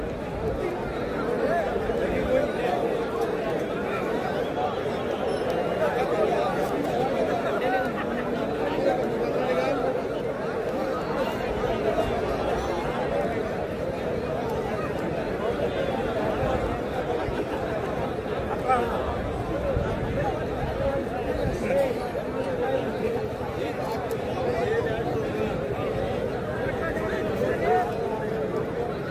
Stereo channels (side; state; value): both; identical; correlation 1.00